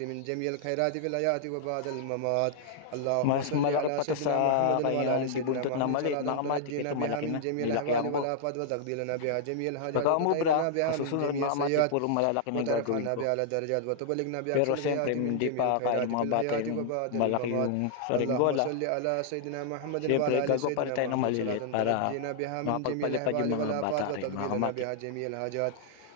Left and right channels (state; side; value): different; both; correlation -0.01